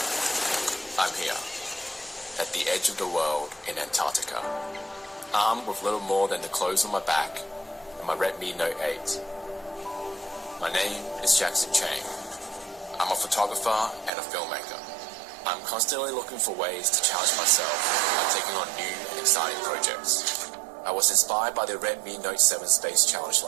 I'm here, at the edge of the world in Antarctica, armed with little more than the clothes on my back and my Redmi Note 8. My name is Jackson Chang. I'm a photographer and a filmmaker. I'm constantly looking for ways to challenge myself by taking on new and exciting projects. I was inspired by the Redmi Note 7 Space Challenge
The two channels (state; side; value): drops out; left; at 14.1 s